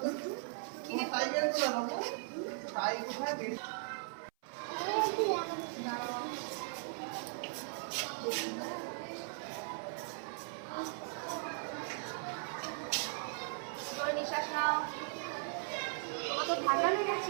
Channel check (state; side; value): silent; left; 52 dB below the other